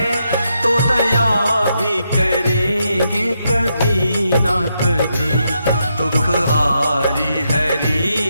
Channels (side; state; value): both; inverted; correlation -0.81